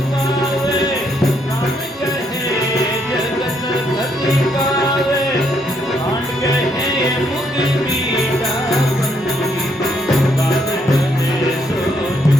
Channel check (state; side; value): normal; both; correlation 0.73